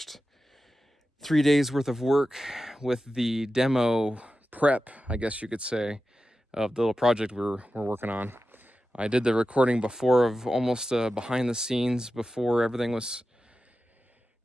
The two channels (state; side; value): normal; both; correlation 0.93